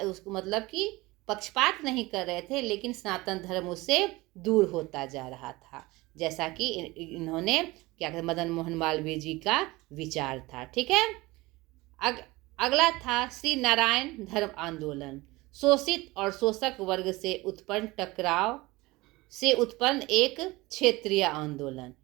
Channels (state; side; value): quieter; left; 21.3 dB